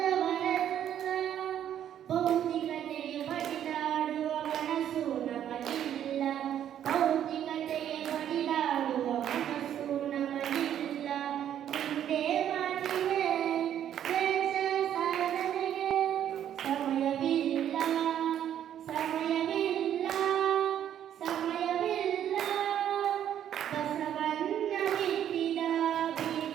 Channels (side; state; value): left; quieter; 10.3 dB